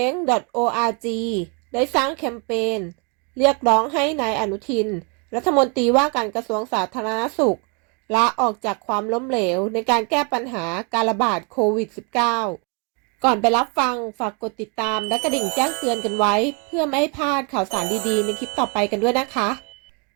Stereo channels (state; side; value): quieter; left; 33.5 dB